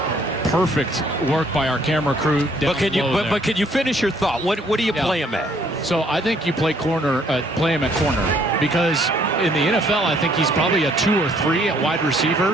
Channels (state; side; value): normal; both; correlation 0.64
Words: perfect work by our camera crew. But can you finish your thought? What do you play him at? So I think you play him at corner, because in the NFL I think he's probably a 2 or 3 at wide